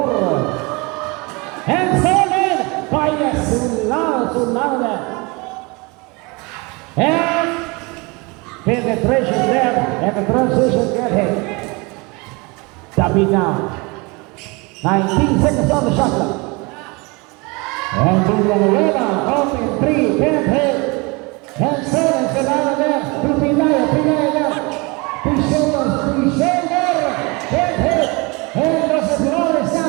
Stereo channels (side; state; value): left; quieter; 27.3 dB